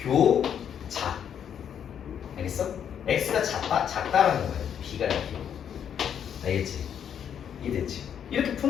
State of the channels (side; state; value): right; quieter; 8.7 dB